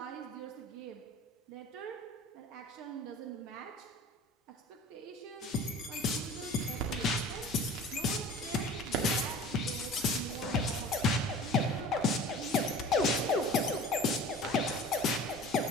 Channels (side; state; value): both; normal; correlation 0.42